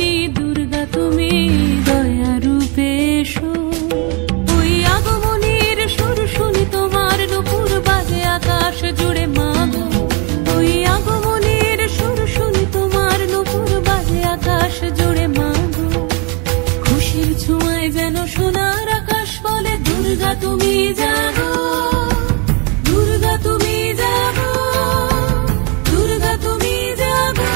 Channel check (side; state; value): left; quieter; 30.7 dB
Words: দুর্গা তুমি দয়া রূপে এসো। ওই আগমনীর সুর শুনি তোমার নুপুর বাজে আকাশ জুড়ে মাগো। ওই আগমনীর সুর শুনি তোমার নুপুর বাজে আকাশ জুড়ে মাগো। খুশির ছোঁয়ায় যেন সোনার আকাশ বলে দুর্গা তুমি জাগো, দুর্গা তুমি জাগো, দুর্গা তুমি জাগো।